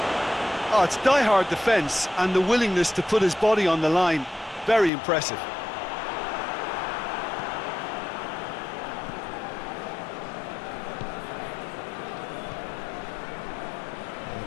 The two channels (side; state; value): right; drops out; at 4.9 s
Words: Oh, it's die-hard defence and the willingness to put his body on the line. Very impressive.